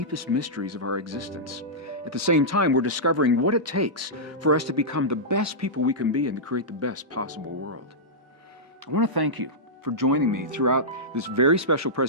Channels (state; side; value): normal; both; correlation -0.12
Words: mysteries of our existence. At the same time, we're discovering what it takes for us to become the best people we can be and to create the best possible world. I want to thank you for joining me throughout this very special